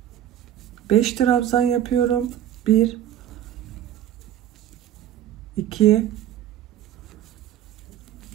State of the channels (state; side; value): quieter; left; 11.3 dB